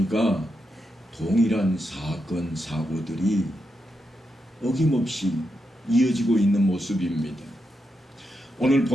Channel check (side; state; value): both; normal; correlation 0.85